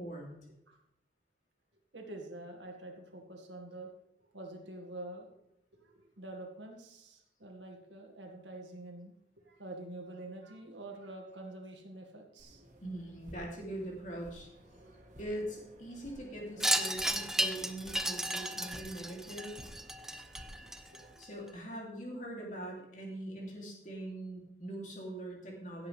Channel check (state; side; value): normal; both; correlation 0.61